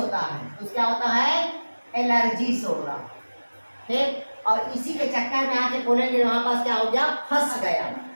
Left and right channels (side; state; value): both; inverted; correlation -1.00